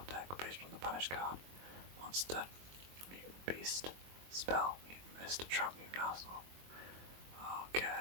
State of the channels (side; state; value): left; late; 22 ms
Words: deck based on the banished card. Monster, mutant beast, spell, mutant mist, trap, mutant arsenal.